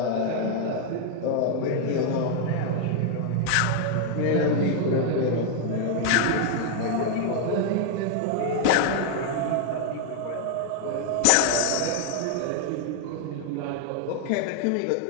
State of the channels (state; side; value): different; both; correlation 0.00